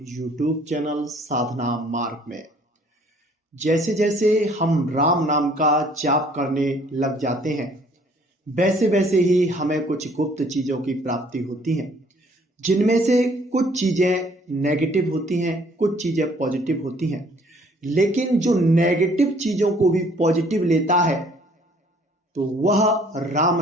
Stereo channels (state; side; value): normal; both; correlation 0.59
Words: YouTube चैनल साधना मार्ग में। जैसे जैसे हम राम नाम का जाप करने लग जाते हैं, वैसे वैसे ही हमें कुछ गुप्त चीज़ों की प्राप्ति होती है, जिनमें से कुछ चीज़ें नेगेटिव होती हैं, कुछ चीज़ें पॉजिटिव होती हैं। लेकिन जो नेगेटिव चीज़ों को भी पॉजिटिव लेता है तो वह राम